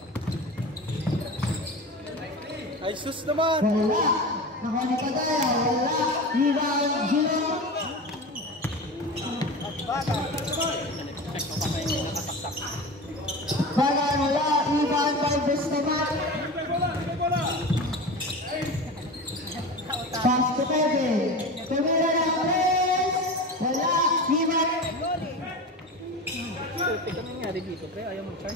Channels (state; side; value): normal; both; correlation 0.29